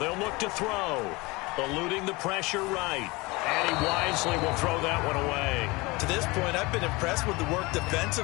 look to throw. Eluding the pressure right. And he wisely will throw that one away. To this point, I've been impressed with the work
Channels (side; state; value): right; quieter; 23.9 dB